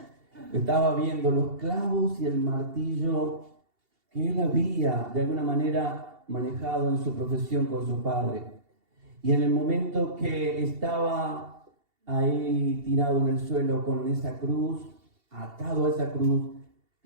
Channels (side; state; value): left; late; 2.8 ms